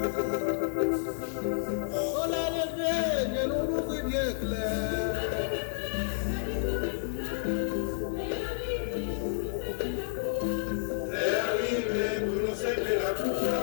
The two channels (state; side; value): silent; right; 58 dB below the other